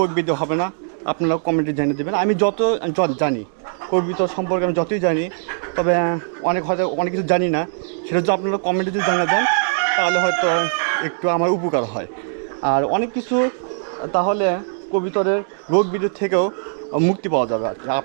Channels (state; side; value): silent; left; digital silence